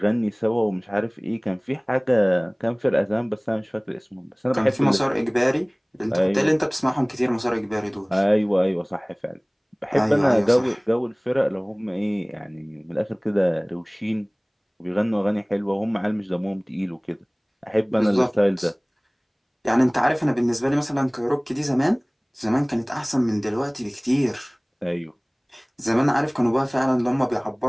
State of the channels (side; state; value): both; identical; correlation 1.00